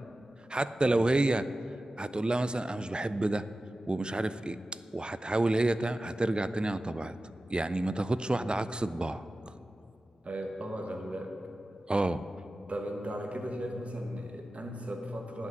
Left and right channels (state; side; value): normal; both; correlation 0.95